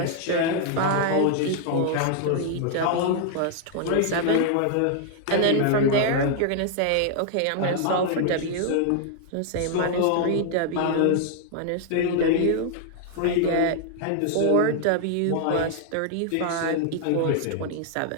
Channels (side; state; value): both; different; correlation -0.01